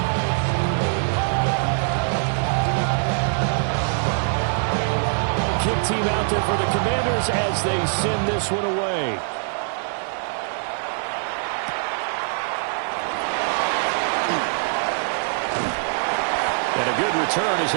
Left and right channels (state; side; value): silent; left; digital silence